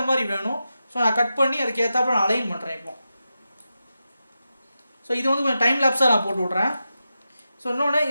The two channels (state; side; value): inverted; both; correlation -0.90